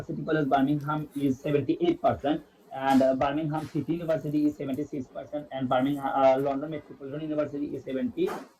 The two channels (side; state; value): both; identical; correlation 1.00